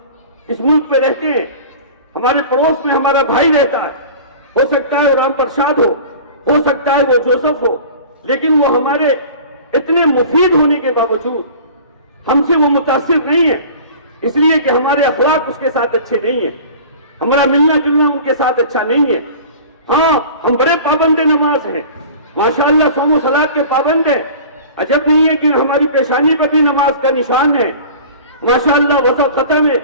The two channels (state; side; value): inverted; both; correlation -0.41